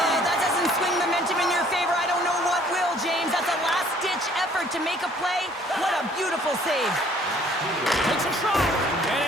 Oh, that doesn't swing momentum in your favor. I don't know what will, James. That's a last-ditch effort to make a play. What a beautiful save. Takes a shot.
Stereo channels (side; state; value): both; normal; correlation 0.58